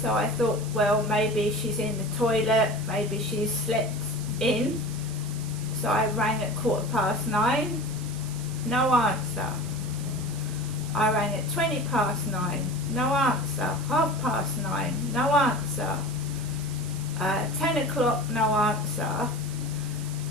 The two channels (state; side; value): noise; right; hiss, 15 dB below the sound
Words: So I thought, well, maybe she's in the toilet, maybe she's slept in. So I rang at 9:15, no answer. I rang at 9:20, no answer. 9:30, no answer. 10 o'clock, no answer.